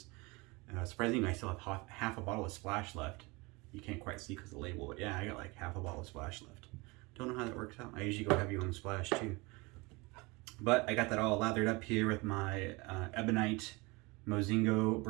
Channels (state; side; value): quieter; left; 25.3 dB